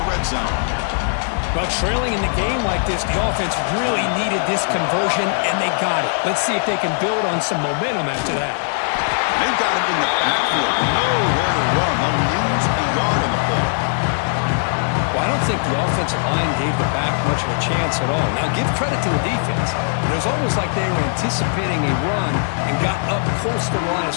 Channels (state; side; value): silent; right; digital silence